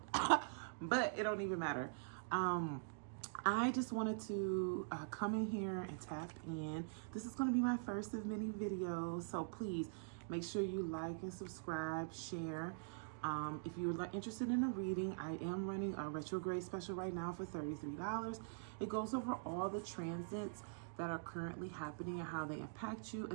but it don't even matter. I just wanted to come in here and tap in. This is going to be my first of many videos, so please make sure you like and subscribe, share. If you're interested in a reading, I am running a retrograde special right now for $33. It goes over all the transits that are currently happening and how they impact you,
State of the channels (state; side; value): silent; left; digital silence